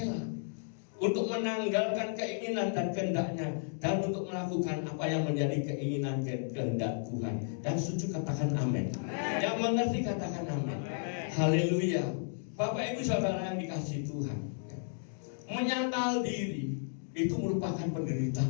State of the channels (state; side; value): silent; right; digital silence